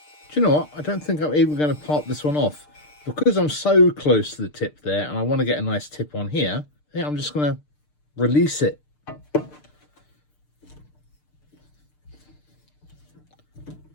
Do you know what? I don't think I'm even going to part this one off. Because I'm so close to the tip there, and I want to get a nice tip on here, I think I'm just going to release it.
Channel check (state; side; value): late; right; 6.7 ms